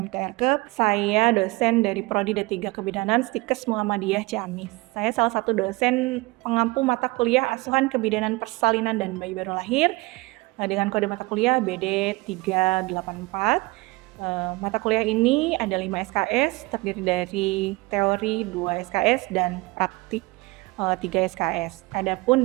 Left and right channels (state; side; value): quieter; left; 23.8 dB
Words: Saya dosen dari Prodi D3 Kebidanan Stikes Muhammadiyah Ciamis. Saya salah satu dosen pengampu mata kuliah asuhan kebidanan persalinan dan bayi baru lahir dengan kode mata kuliah BD 384. Mata kuliah ini ada 5 SKS, terdiri dari teori 2 SKS dan praktik 3 SKS. Adapun